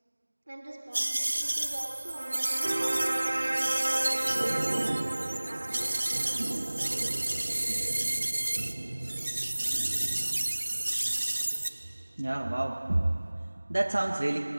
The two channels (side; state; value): both; inverted; correlation -1.00